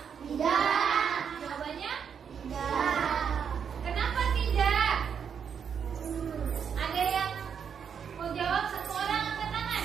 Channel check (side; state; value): left; quieter; 7.3 dB